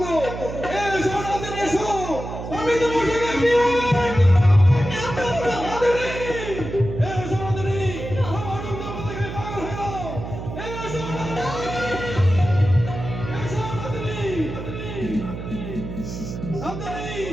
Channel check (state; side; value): noise; right; hum, 8 dB below the sound